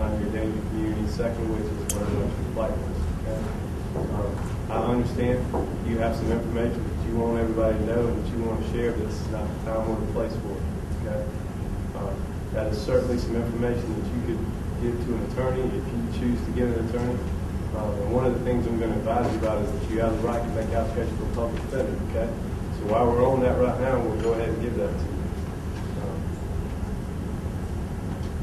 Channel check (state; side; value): identical; both; correlation 1.00